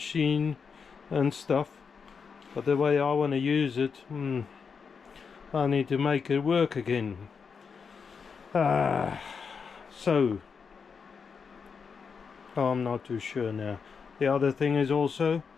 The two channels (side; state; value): right; quieter; 5.8 dB